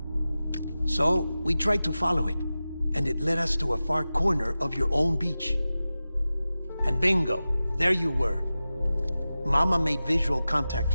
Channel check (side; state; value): both; inverted; correlation -0.95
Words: So, we tried to follow it, and it led us to a far corner of your own beach. And bingo, there you were. Mama made visual contact